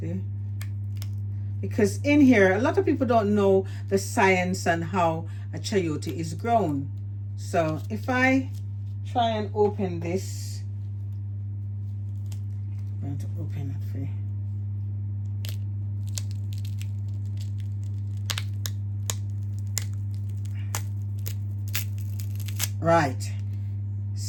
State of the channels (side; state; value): both; identical; correlation 1.00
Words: Because in here, a lot of people don't know the science and how a chayote is grown. So if I try and open this, I'm going to open it for you. Right,